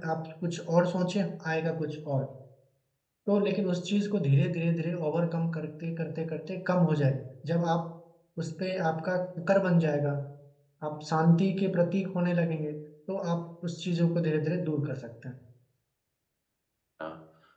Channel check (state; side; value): identical; both; correlation 1.00